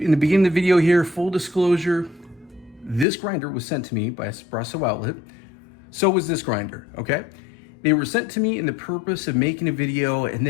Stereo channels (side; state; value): right; drops out; at 3.1 s